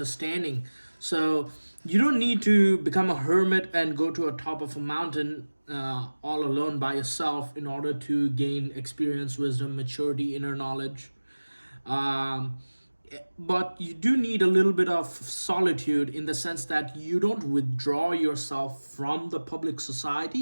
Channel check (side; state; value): both; inverted; correlation -1.00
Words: So you don't need to become a hermit and go to a top of a mountain all alone by yourself in order to gain experience, wisdom, maturity, inner knowledge. Um, but you do need a little bit of solitude in the sense that you don't withdraw yourself from the public